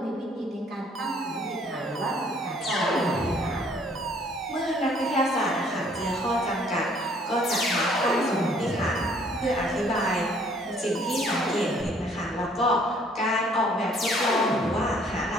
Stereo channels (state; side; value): normal; both; correlation 0.60